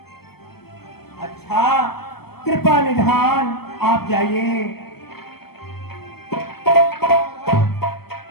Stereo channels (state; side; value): late; right; 0.96 ms